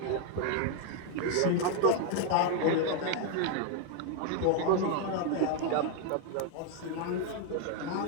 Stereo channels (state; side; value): different; both; correlation 0.00